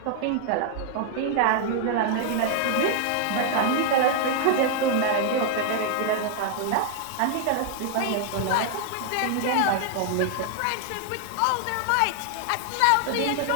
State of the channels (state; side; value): different; both; correlation 0.00